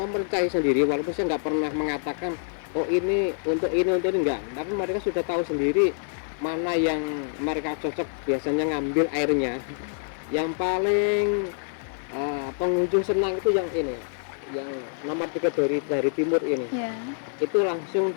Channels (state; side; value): silent; right; 57 dB below the other